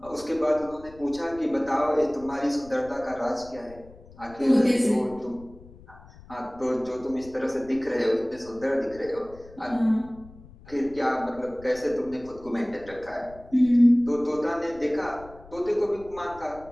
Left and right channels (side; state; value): left; noise; rumble, 21 dB below the sound